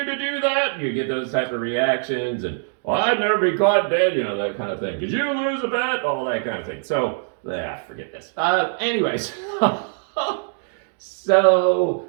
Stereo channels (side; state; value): left; silent; digital silence